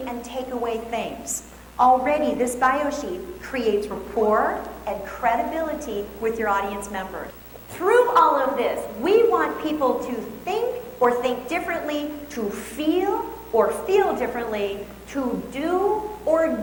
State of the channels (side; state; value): both; identical; correlation 1.00